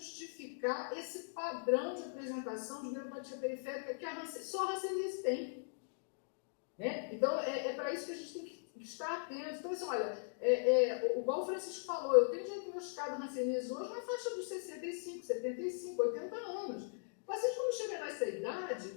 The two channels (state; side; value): silent; right; digital silence